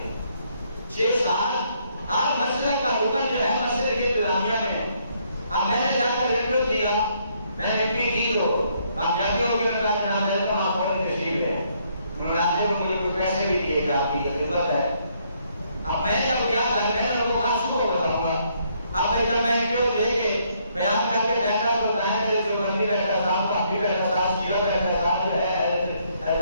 ہیں، 6 سال ہر مسجد کا رکن جو ہے مسجد کی انتظامیہ میں۔ اب میں نے جا کر انٹرویو دیا، میں نے انٹرویو دی تو کامیابیوں کے اندر جناب ہے تو آپ پڑھنے تشریف ہے، مناظر کو مجھے کچھ پیسے بھی دیے گا، آپ کی خدمت ہے۔ اب میں جب گیا تھا میں نے ان کو بات شروع بتاؤں گا، اب بھائی جب میں انٹرویو دے کے بیان کر کے بیٹھا تو دائیں میرے جو بندی بیٹھا صاحب بھاگی بیٹھا صاحب شیعہ بیٹھا صاحب جو ہے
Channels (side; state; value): both; inverted; correlation -0.70